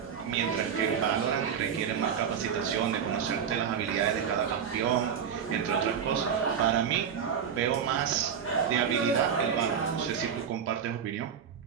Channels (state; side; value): quieter; left; 7.6 dB